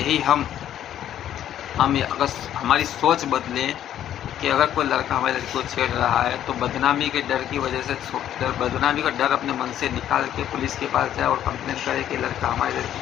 हम अगर हमारी सोच बदले कि अगर कोई लड़का हमारी लड़की को छेड़ रहा है तो बदनामी के डर की वजह से बदनामी का डर अपने मन से निकाल के पुलिस के पास जाए और कंप्लेन करे कि लड़का हमारी लड़की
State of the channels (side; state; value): right; quieter; 11.0 dB